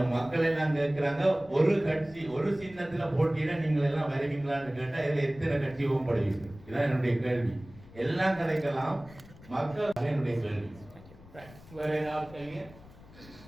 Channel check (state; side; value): noise; left; rumble, 21 dB below the sound